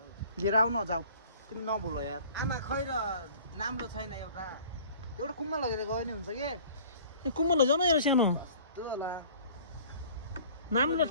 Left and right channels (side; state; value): both; inverted; correlation -0.49